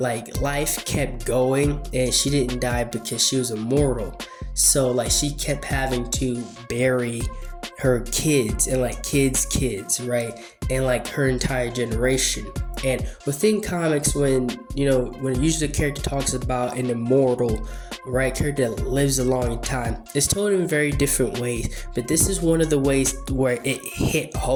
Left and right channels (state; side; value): identical; both; correlation 1.00